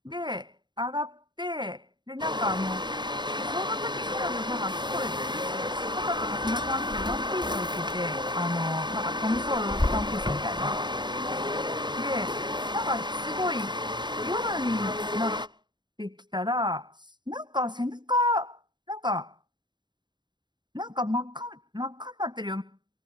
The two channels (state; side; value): late; left; 0.22 ms